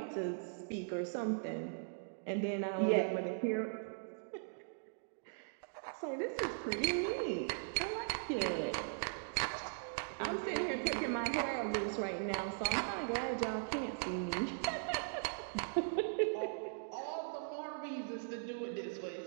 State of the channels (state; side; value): silent; left; digital silence